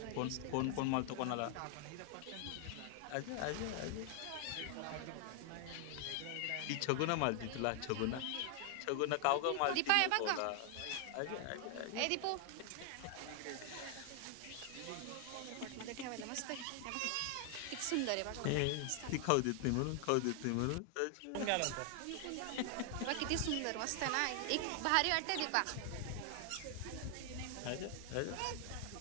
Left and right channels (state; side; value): different; both; correlation 0.00